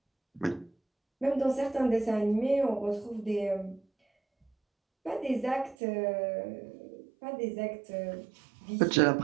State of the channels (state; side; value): drops out; left; at 5.8 s